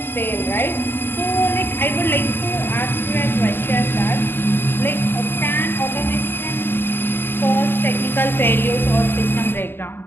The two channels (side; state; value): right; late; 0.10 ms